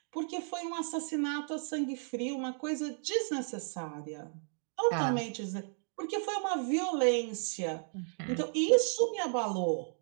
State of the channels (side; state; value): left; silent; 55 dB below the other